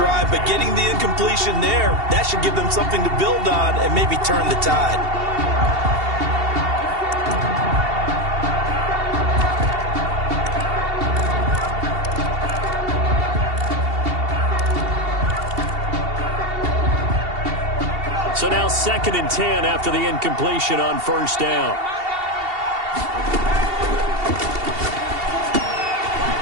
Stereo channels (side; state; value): left; late; 2.7 ms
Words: but getting the incompletion there, that should give them something to build on and maybe turn the tide. So now 2nd and 10 after the incompletion on first down.